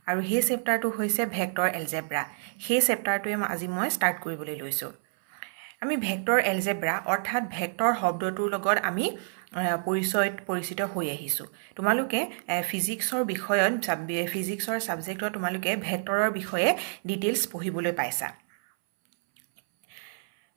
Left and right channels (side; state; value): left; silent; 59 dB below the other